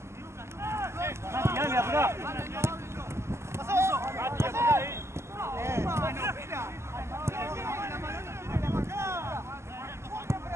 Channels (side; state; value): left; late; 0.13 ms